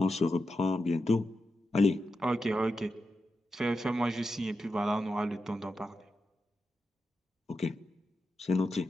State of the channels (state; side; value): normal; both; correlation 0.88